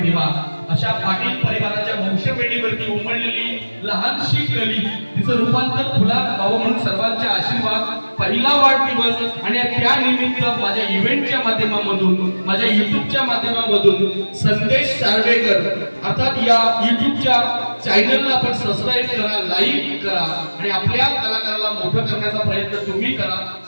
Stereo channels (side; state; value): both; inverted; correlation -1.00